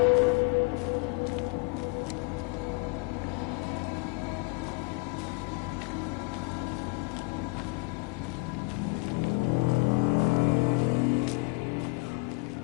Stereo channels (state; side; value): quieter; right; 31.1 dB